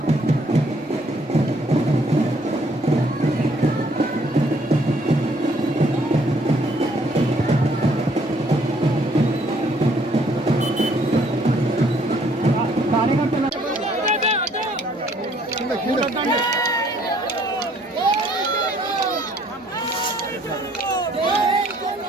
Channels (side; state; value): both; normal; correlation 0.64